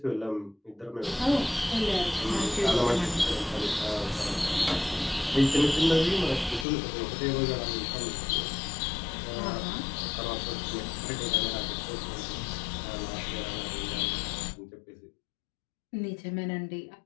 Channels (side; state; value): right; drops out; at 6.7 s